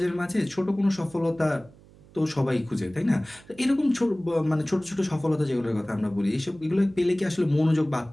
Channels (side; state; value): right; noise; hum, 25 dB below the sound